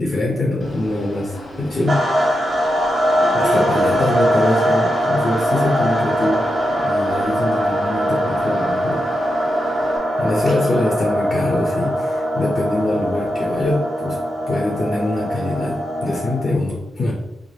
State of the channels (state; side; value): normal; both; correlation 0.87